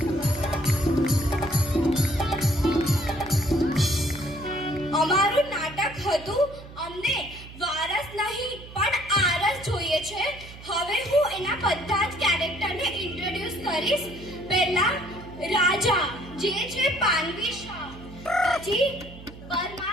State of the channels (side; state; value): right; noise; hum, 16 dB below the sound